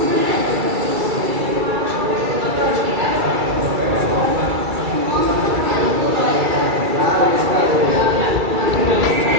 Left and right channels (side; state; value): left; late; 2.3 ms